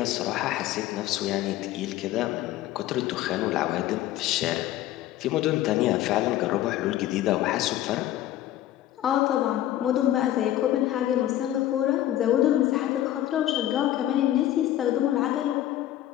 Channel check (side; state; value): right; quieter; 13.2 dB